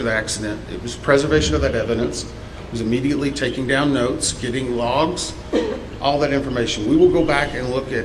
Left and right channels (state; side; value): identical; both; correlation 1.00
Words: the accident. It was preservation of that evidence. It was immediately taking down notes, getting logs, all that information. We will go back and look at